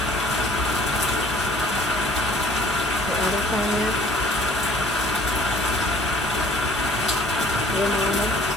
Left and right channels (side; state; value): both; normal; correlation 0.54